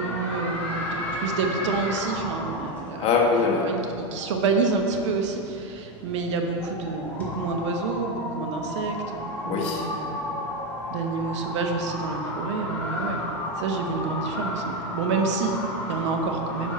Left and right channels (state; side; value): normal; both; correlation 0.11